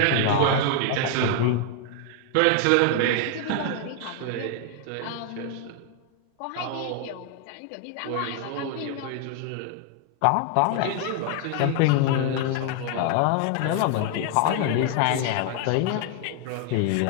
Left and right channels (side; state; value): both; different; correlation 0.00